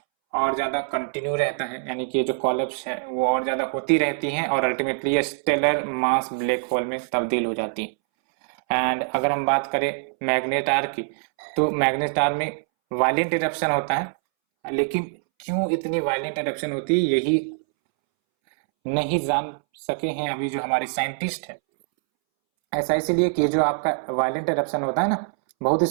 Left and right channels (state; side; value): silent; left; 63 dB below the other